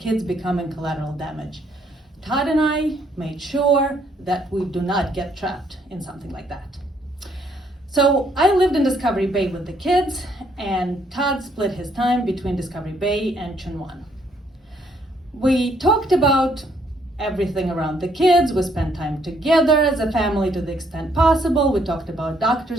becoming collateral damage. Todd and I made sure that we do not get trapped in something like that. So I lived in Discovery Bay with the kids, and Todd split his time between Discovery Bay and Chunwan. We talked about everything around the kids. We spent time together as a family to the extent possible. We talked about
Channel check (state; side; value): normal; both; correlation 0.69